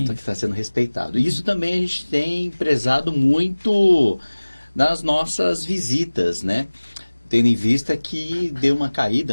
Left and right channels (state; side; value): inverted; both; correlation -1.00